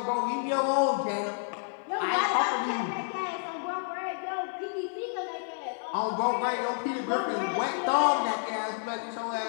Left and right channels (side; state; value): right; silent; digital silence